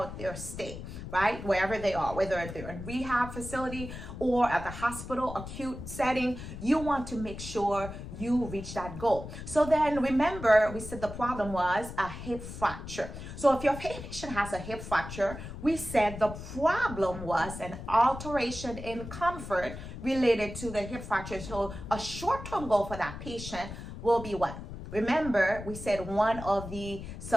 their stay, right? Wherever they are, whether they're in rehab facility or at the hospital, acute setting, you want to make sure you reach that goal. So then remember, we said the problem was a hip fracture. So if your patient has a hip fracture, we said the problem was an alteration in comfort related to the hip fracture. So a short-term goal for that patient will be what? Remember, we said one of the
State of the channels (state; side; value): noise; left; rumble, 10 dB below the sound